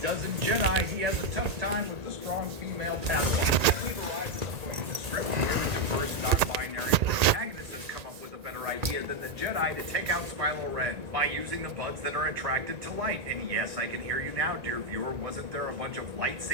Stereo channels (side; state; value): left; late; 1.8 ms